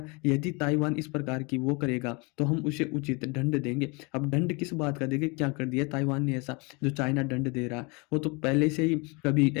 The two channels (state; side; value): quieter; right; 29.2 dB